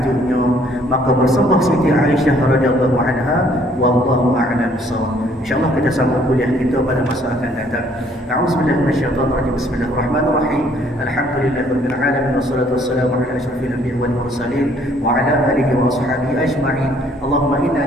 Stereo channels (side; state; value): both; normal; correlation 0.62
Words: maka bersembah Siti Aisyah radhiyallahu anha, wallahu a'lam bissawab. InsyaAllah kita sambung kuliah kita pada masa akan datang. A'udzubillahi minasyaitonirrajim. Bismillahirrahmanirrahim. Alhamdulillahirabbil alamin wassalatu wassalamu ala asyrafil anbiya'i wal mursalin wa ala alihi wa ashabihi ajma'in. Allahumma